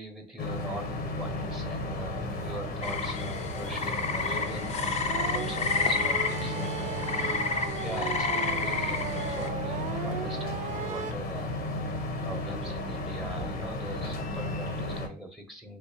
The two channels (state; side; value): normal; both; correlation 0.02